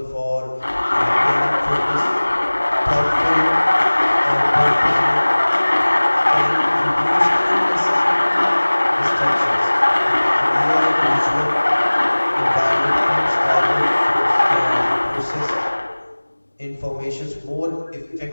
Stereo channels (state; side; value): inverted; both; correlation -1.00